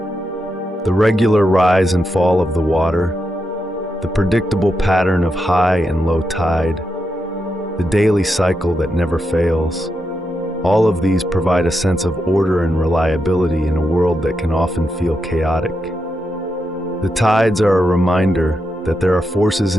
The regular rise and fall of the water, the predictable pattern of high and low tide, the daily cycle that never fails, all of these provide a sense of order and reliability in a world that can often feel chaotic. The tides are a reminder that there are forces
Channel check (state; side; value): normal; both; correlation 0.85